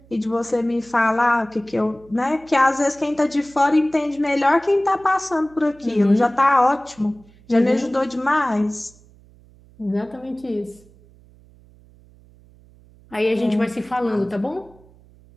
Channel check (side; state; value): right; noise; hum, 27 dB below the sound